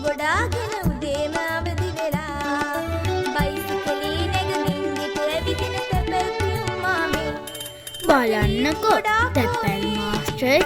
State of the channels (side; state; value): both; identical; correlation 1.00